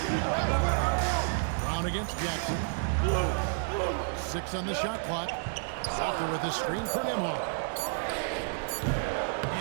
Brown against Jackson. 6 on the shot clock. Walker with a screen for Nembhard.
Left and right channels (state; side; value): silent; left; digital silence